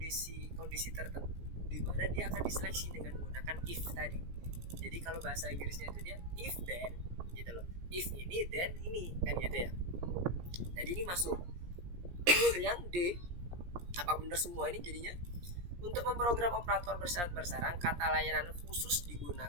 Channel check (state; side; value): late; left; 17 ms